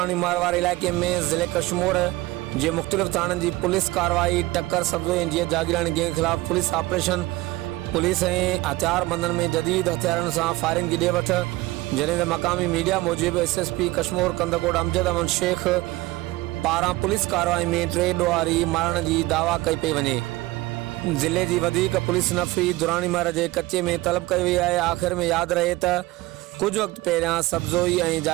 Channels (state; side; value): quieter; left; 19.3 dB